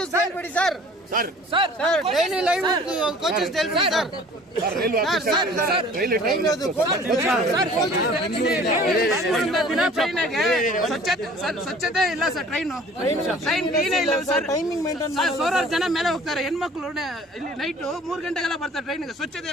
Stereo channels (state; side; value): normal; both; correlation 0.49